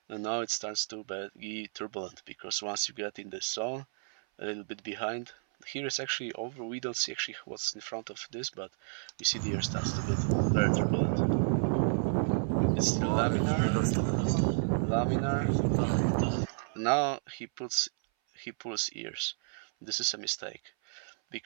And now it starts to be turbulent because once you get in the zone, a little bit behind. Here is actually over. We don't see actually what's in front of this, but we see the air starts to get very turbulent. It's still laminar. Now he pulls ears. This is a mistake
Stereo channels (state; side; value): silent; left; 57 dB below the other